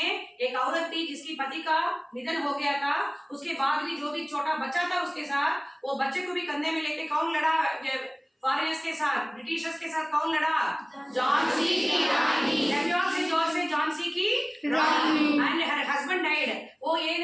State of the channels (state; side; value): identical; both; correlation 1.00